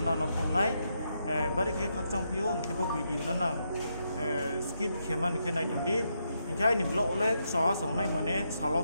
নানা ফংনাই বারি কে খকচং পিও কে বো video না skip খেমান কে নাই দंदि কে আইনি ব্লগ ले स संनाय माने सालो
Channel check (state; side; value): inverted; both; correlation -0.81